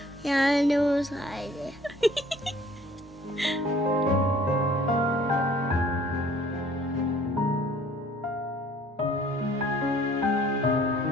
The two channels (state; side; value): normal; both; correlation 0.55